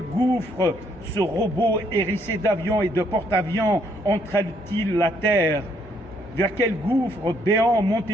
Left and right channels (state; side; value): normal; both; correlation 0.69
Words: gouffre ce robot hérissé d'avions et de porte-avions entraîne-t-il la terre? Vers quel gouffre béant